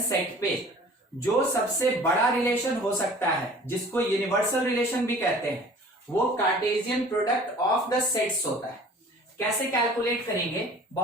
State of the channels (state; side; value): normal; both; correlation 0.47